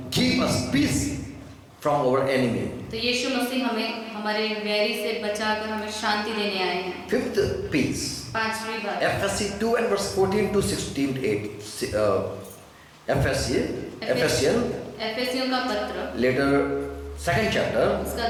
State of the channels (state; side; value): identical; both; correlation 1.00